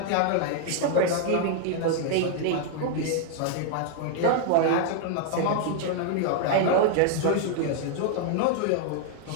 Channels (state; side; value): different; both; correlation 0.00